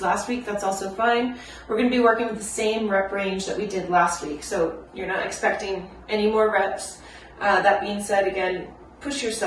last week, that's also fine. We're going to be working with the same rep range that we did last week, so you're not expecting any more reps. That being said, again, push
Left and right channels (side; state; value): both; identical; correlation 1.00